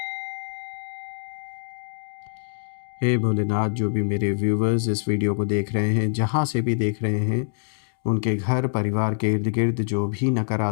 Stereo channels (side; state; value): right; silent; digital silence